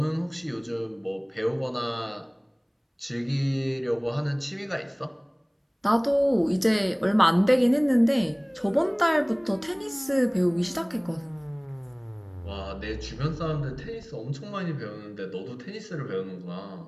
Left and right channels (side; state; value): both; identical; correlation 1.00